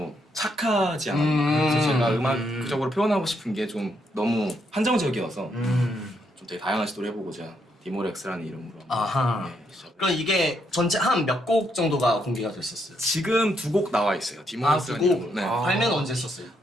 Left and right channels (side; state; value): both; normal; correlation 0.76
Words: 착하지 않아요. 그래서 제가 음악적으로 표현하고 싶은 게 좀 너무 한정적이어서 좀 되게 다양한 시도를 해보고자 디모렉스라는 이름으로 아하. 시작. 그럼 이게 전체 한 몇 곡 정도가 공개가 됐었어요? 지금 2곡 나와 있어요. 두 디모렉스라는 곡? 이름으로. 네. 발매는 언제 했었어요?